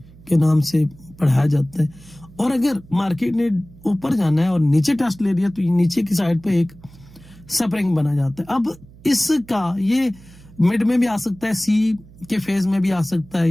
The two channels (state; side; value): noise; right; hum, 22 dB below the sound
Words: کے نام سے پڑھایا جاتا ہے. اور اگر مارکیٹ نے اوپر جانا ہے اور نیچے ٹیسٹ لے لیا تو نیچے کی سائڈ پہ ایک سپرنگ بنا جاتا ہے. اب اس کا یہ مڈ میں بھی آ سکتا ہے, سی کے فیز میں بھی آ سکتا ہے,